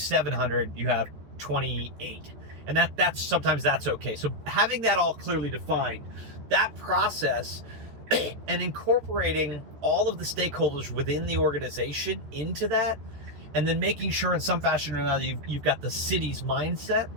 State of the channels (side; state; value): left; late; 14 ms